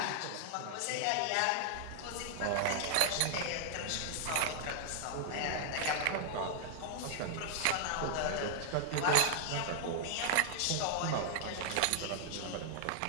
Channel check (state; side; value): different; both; correlation -0.01